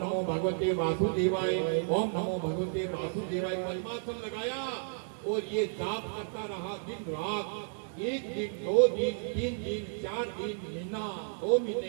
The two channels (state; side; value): silent; left; digital silence